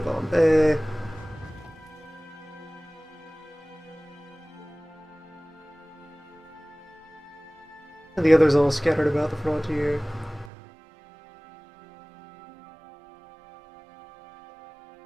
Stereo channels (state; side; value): drops out; left; at 10.5 s